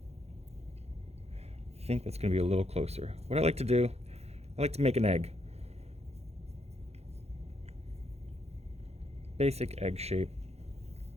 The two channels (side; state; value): left; late; 0.31 ms